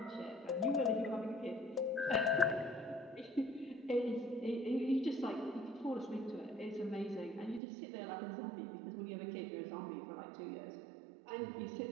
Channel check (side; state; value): left; drops out; at 7.6 s